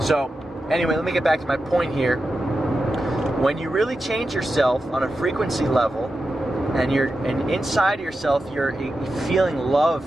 anyway, let me get back to my point here. When you really change yourself on a frequency level, and inside yourself you're feeling love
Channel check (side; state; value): both; normal; correlation 0.90